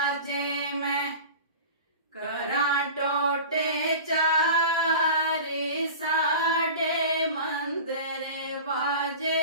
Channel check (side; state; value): both; inverted; correlation -0.36